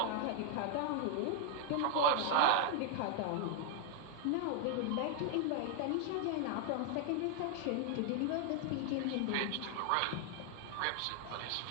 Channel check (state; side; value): different; both; correlation 0.00